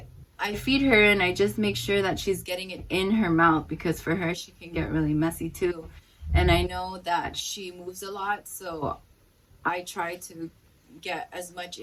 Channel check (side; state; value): both; identical; correlation 1.00